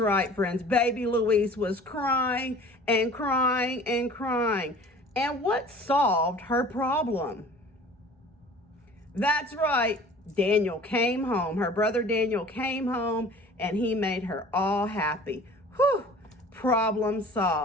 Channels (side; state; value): both; normal; correlation 0.46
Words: friends. Baby Louise was crying and crying and crying. And what solved her problem? That's right. Daniel came home. Her brother Daniel came home, and he made her all happy. Whew. Problem